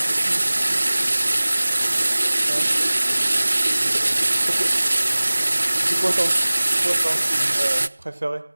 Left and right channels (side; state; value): both; inverted; correlation -1.00